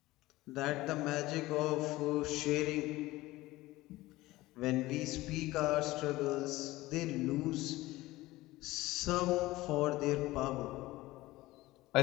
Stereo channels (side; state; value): right; quieter; 18.4 dB